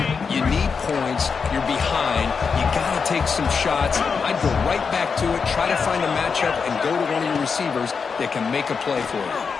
You need points. You're behind. You got some shots, I'd go right back to it, try to find a matchup, and go to one of your receivers that can make a play for you.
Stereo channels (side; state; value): right; quieter; 5.5 dB